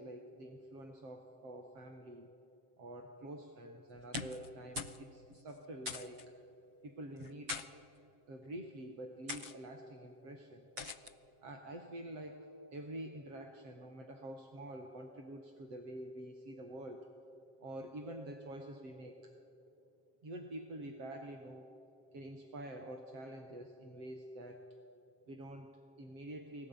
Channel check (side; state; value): left; late; 7.5 ms